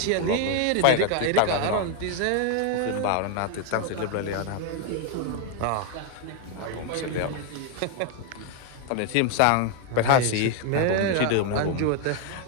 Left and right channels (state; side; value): different; both; correlation 0.01